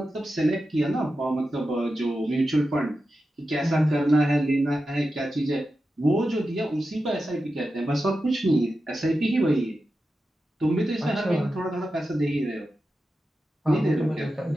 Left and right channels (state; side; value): normal; both; correlation 0.91